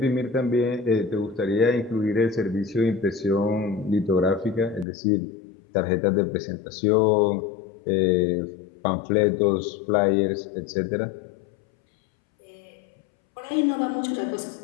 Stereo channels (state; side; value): drops out; right; at 4.9 s